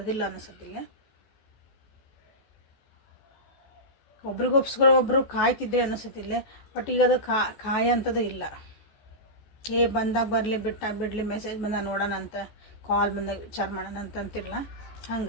ಅನ್ನಿಸುತ್ತಿಲ್ಲ. ಒಬ್ರಿಗೊಬ್ಸ್ಕರ ಒಬ್ಬರು ಕಾಯ್ತಿದ್ರೆ ಅನ್ನಿಸುತ್ತಿಲ್ಲ, ಬಟ್ ಈಗ ಅದು ಕಾಯ ಅಂಥದ್ದು ಇಲ್ಲ. ಬಂದಾಗ ಬರಲಿ, ಬಿಡಲಿ, ಮೆಸೇಜ್ ಬಂದಾಗ ನೋಡೋಣ ಅಂತ, ಕಾಲ್ ಬಂದಾಗ ವಿಚಾರ ಮಾಡೋಣ ಅಂತ ಅಂತಿರಲ್ಲ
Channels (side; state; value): right; late; 14 ms